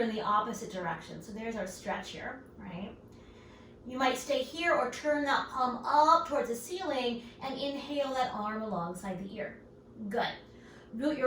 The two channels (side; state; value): both; identical; correlation 1.00